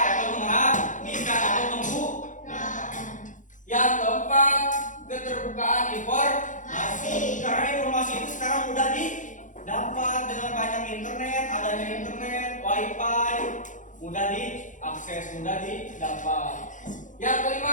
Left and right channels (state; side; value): late; right; 0.37 ms